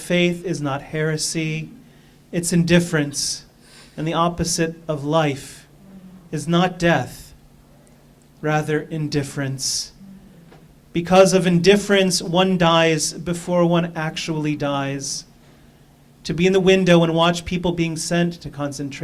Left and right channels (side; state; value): both; identical; correlation 1.00